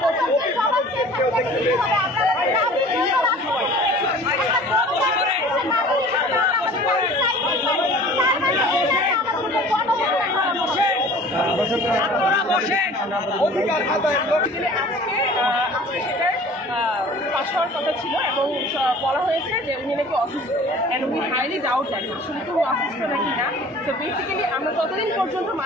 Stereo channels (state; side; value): normal; both; correlation 0.46